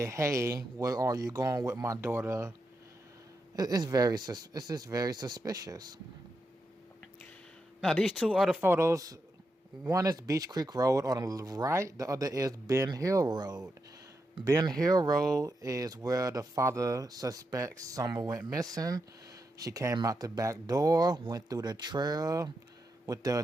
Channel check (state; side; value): normal; both; correlation 0.85